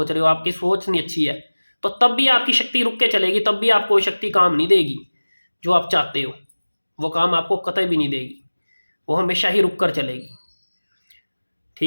रहे हो, आपकी सोच नहीं अच्छी है, तो तब भी आपकी शक्ति रुक के चलेगी, तब भी आपको शक्ति काम नहीं देगी जो आप चाहते हो। वो काम आपको कतई भी नहीं देगी, वो हमेशा ही रुक कर चलेगी।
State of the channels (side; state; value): both; inverted; correlation -1.00